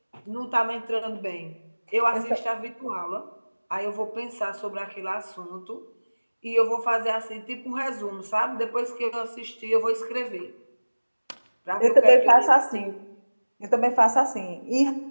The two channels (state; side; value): inverted; both; correlation -1.00